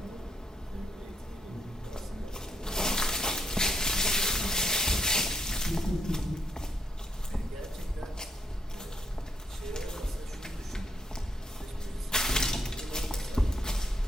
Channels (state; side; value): normal; both; correlation 0.77